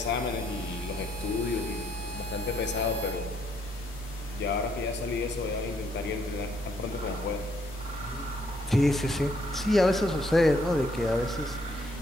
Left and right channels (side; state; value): both; normal; correlation 0.71